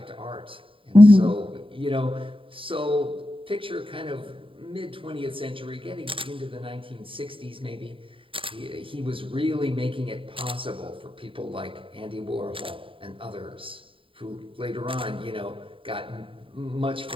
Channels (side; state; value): left; late; 0.25 ms